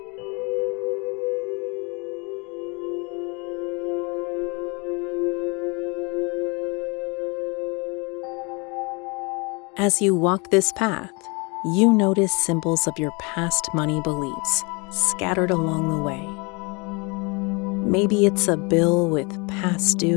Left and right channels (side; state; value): right; quieter; 29.9 dB